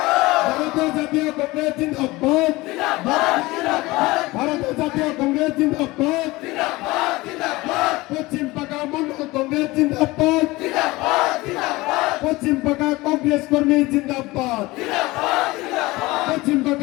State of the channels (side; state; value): right; quieter; 20.8 dB